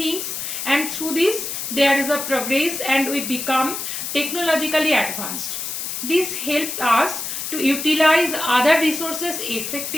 and through this there is a progress and we become technologically advanced. This helps us to utilize other resources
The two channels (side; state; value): left; noise; hiss, 5 dB below the sound